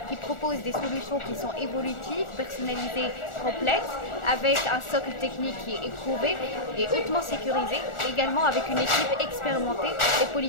qui propose des solutions qui sont évolutives, personnalisées, complètes, avec un socle technique qui est éprouvé et hautement sécurisé, également avec une équipe expérimentée et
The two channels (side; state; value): right; late; 1.4 ms